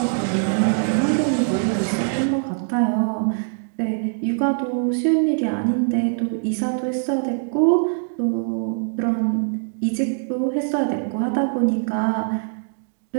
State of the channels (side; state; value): left; silent; digital silence